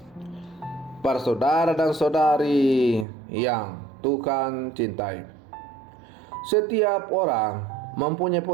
Para saudara dan saudari yang Tuhan cintai, setiap orang mempunyai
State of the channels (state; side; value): drops out; left; at 3.1 s